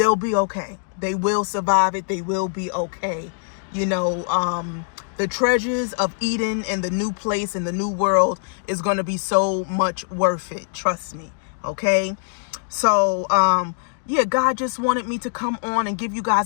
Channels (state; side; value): silent; right; digital silence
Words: be okay. They will survive it. They will be okay. You know, the treasures of Eden and the new place and the new world is going to be so much worth it. Trust me. Okay. So, yeah, God just wanted me to come on and give you